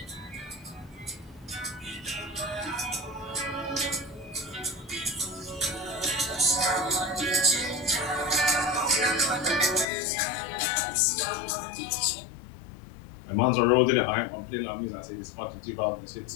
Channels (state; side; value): drops out; right; at 9.9 s